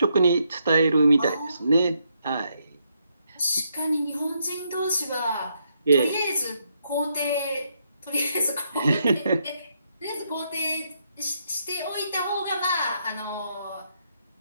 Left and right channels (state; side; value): inverted; both; correlation -0.77